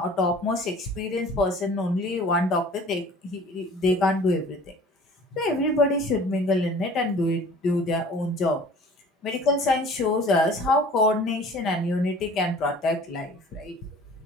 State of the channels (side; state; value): both; normal; correlation 0.47